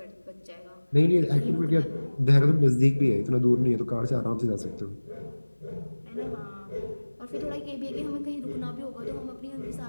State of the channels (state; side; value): inverted; both; correlation -1.00